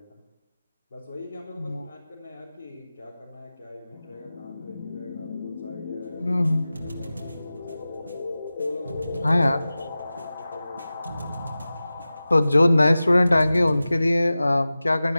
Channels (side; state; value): both; inverted; correlation -0.96